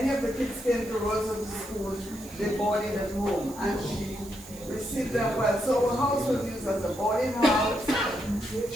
of the kids came to Roseau to school. They boarded at home, and she received them well. So her house was used as a boarding house.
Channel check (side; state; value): right; noise; hiss, 18 dB below the sound